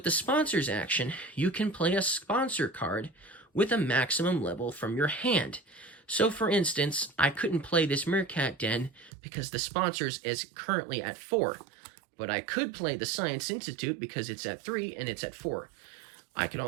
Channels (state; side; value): drops out; left; at 9.1 s